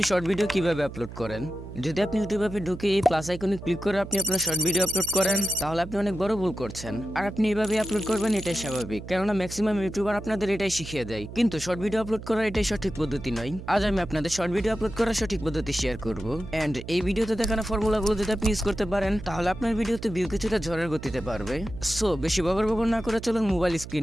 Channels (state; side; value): noise; right; hum, 12 dB below the sound